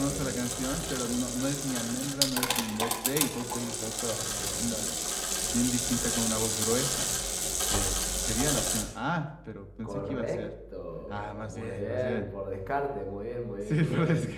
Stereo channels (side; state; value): both; identical; correlation 1.00